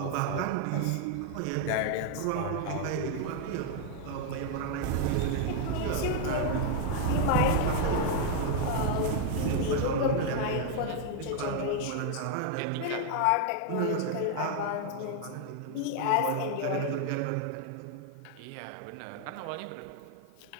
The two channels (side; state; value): both; different; correlation 0.00